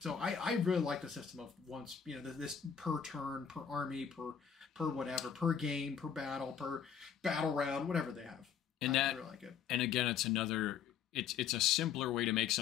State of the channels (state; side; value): quieter; right; 7.7 dB